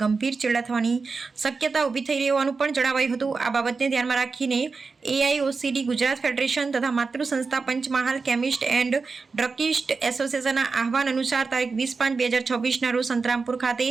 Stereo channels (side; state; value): left; quieter; 4.5 dB